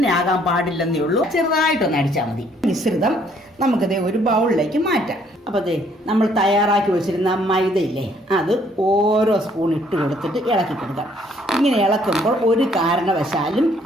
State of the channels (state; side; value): normal; both; correlation 0.64